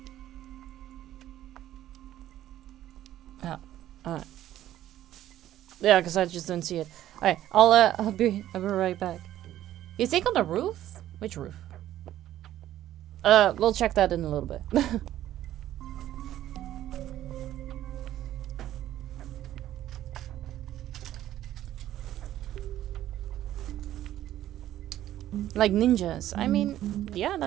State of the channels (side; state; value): left; quieter; 12.9 dB